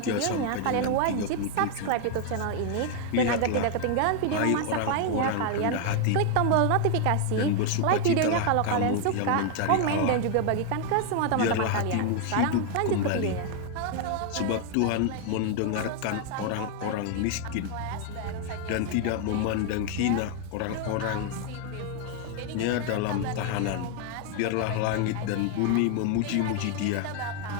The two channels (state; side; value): different; both; correlation 0.00